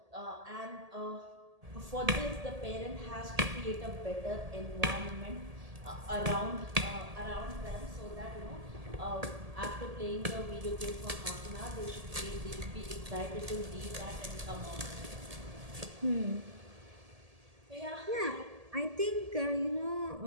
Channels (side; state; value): left; late; 1.7 ms